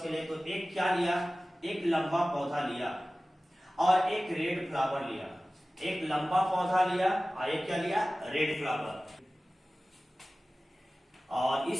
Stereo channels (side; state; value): both; normal; correlation 0.97